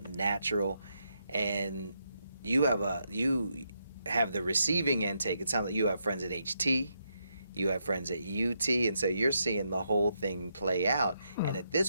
natural. And you have the receiving intake. It sounds like you have friends at HT. You have friends at UT, and so you're seeing the whole thing play out. And at this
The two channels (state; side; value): inverted; both; correlation -0.80